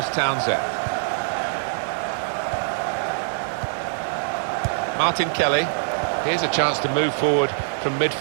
Townsend. Martin Kelly. Here's a chance to move forward from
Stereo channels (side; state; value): left; silent; digital silence